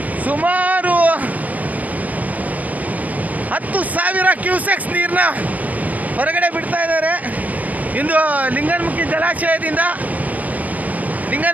ಸುಮಾರು 10,000 ಕ್ಯೂಸೆಕ್ಸ್ ನೀರನ್ನ ಹೊರಗಡೆ ಬಿಡ್ತಾ ಇದ್ದಾರೆ. ಇಂದು ಲಿಂಗನಮುಖಿ ಜಲಾಶಯದಿಂದ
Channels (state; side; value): late; left; 0.079 ms